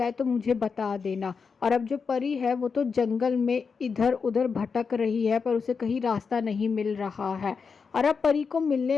तो मुझे बता देना। और अब जो परी है वो तो जंगल में इधर उधर भटक रही है पर उसे कहीं रास्ता नहीं मिल रहा है। और अब परी को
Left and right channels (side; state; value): right; quieter; 5.4 dB